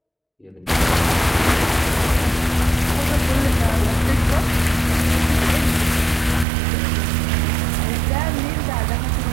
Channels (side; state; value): left; drops out; at 6.5 s